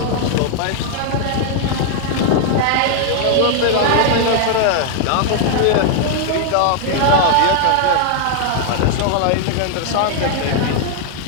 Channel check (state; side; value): different; both; correlation 0.00